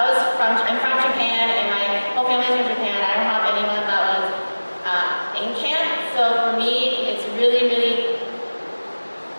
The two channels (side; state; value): both; inverted; correlation -1.00